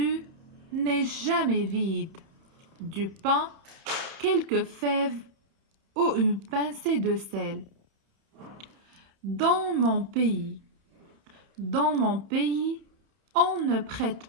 n'est jamais vide. Du pain, quelques fèves ou une pincée de sel. Dans mon pays, on ne prête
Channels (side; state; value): left; late; 30 ms